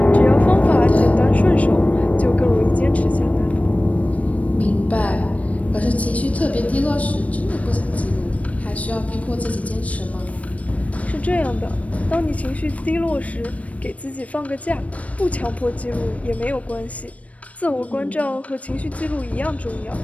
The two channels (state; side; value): late; right; 0.067 ms